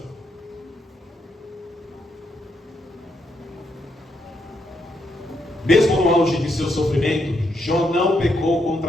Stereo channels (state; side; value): normal; both; correlation 0.78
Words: Mesmo no auge de seu sofrimento, Jó não pecou